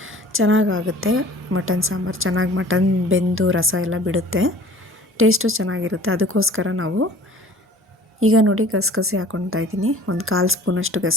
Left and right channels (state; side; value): normal; both; correlation 0.47